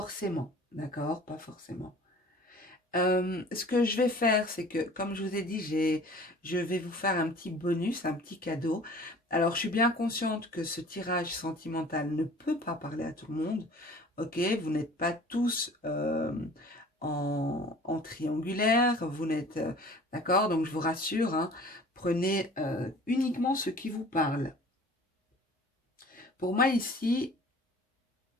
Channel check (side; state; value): both; normal; correlation 0.47